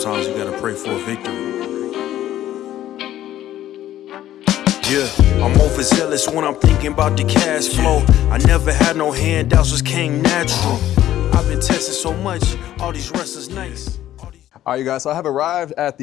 you gotta pray for a victory. Yeah, I'm overzealous when I'm thinking about the cash flow. I never had no handouts, just came natural. I've been tested so much, all these restless nights. All right, you guys, so I have arrived at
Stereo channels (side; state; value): right; quieter; 12.8 dB